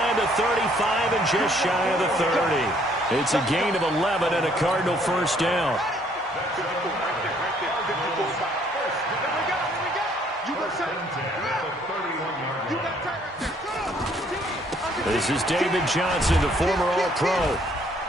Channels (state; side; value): normal; both; correlation 0.64